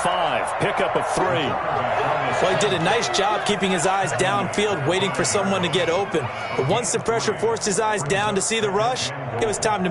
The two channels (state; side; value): identical; both; correlation 1.00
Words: Pickup of 3. Well, he did a nice job keeping his eyes downfield, waiting for someone to get open. But once the pressure forced his eyes down to see the rush, it was time to